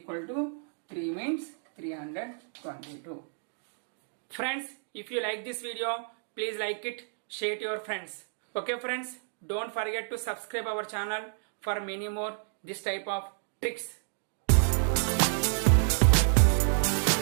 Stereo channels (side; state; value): left; silent; digital silence